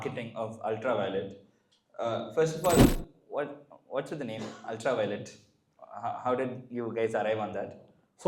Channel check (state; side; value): identical; both; correlation 1.00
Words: of Ultraviolet. First of all, what's with the name Ultraviolet? How did you guys arrive on that?